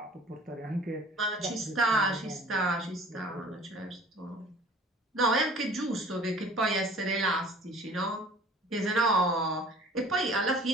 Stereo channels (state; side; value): normal; both; correlation 0.47